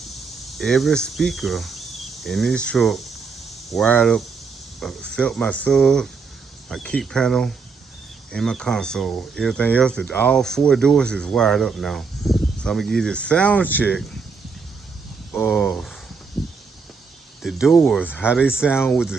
every speaker in this truck wired up, except my sub, my kick panel, and my console. Everything else, all four doors is wired up now. So I'm gonna give you a sound check of the doors, how they sound with the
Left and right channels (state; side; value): quieter; left; 5.0 dB